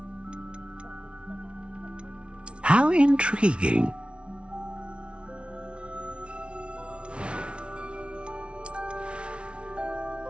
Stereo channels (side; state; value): left; late; 0.059 ms